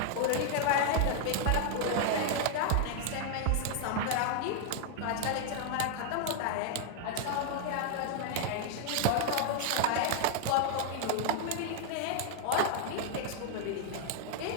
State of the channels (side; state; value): both; different; correlation 0.00